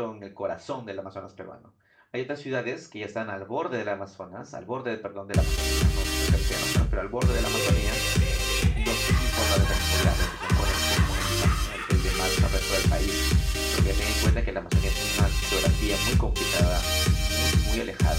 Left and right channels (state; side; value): identical; both; correlation 1.00